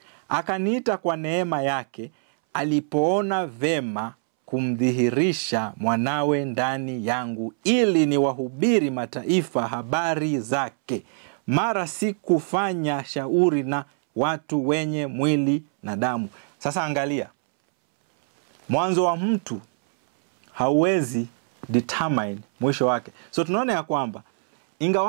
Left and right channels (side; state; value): left; silent; 63 dB below the other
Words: akaniita kwa neema yake, alipoona vema kumdhihirisha mwanawe ndani yangu, ili niwahubiri mataifa habari zake. Mara sikufanya shauri na watu wenye mwili na damu. Sasa angalia, mwanzo wa mtu hauwezi determine mwisho wake. So tunaona ya kwamba